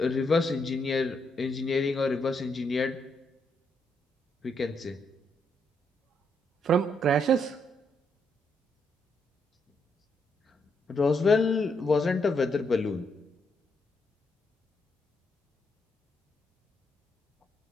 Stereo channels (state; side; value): normal; both; correlation 0.77